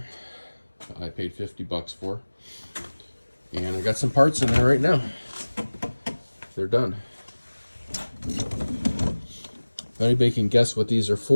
I paid $50 for, and I got some parts in there right now. They're done. If anybody can guess what these are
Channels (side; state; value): both; inverted; correlation -1.00